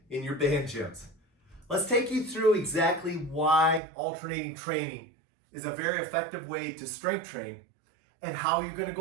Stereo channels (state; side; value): drops out; left; at 3.8 s